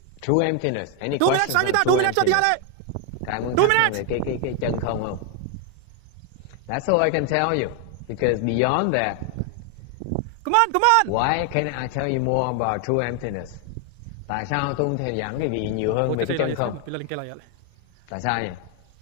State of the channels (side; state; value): both; different; correlation 0.01